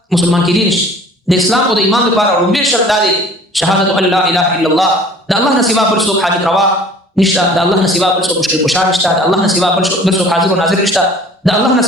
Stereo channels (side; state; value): both; normal; correlation 0.49